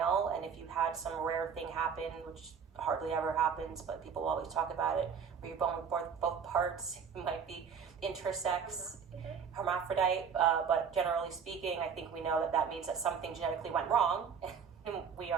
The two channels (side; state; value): left; quieter; 6.7 dB